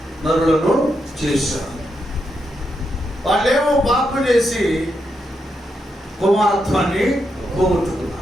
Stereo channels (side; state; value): both; normal; correlation 0.83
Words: నరులను చేశారు. వాళ్ళేమో పాపం చేసి కుమారత్వాన్ని పోగొట్టుకున్నారు.